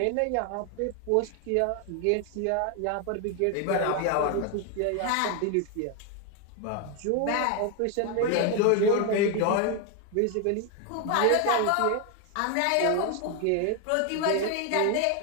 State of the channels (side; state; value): both; different; correlation 0.01